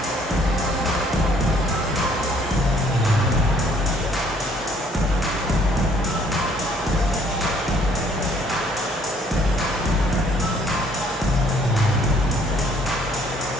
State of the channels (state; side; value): normal; both; correlation 0.62